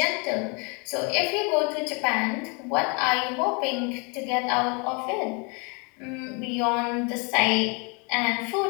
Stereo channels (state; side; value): quieter; right; 32.4 dB